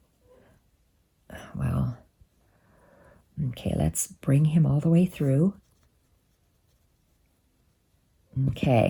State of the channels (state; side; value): identical; both; correlation 1.00